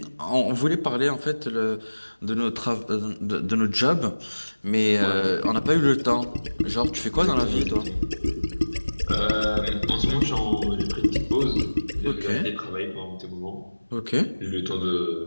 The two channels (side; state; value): both; inverted; correlation -1.00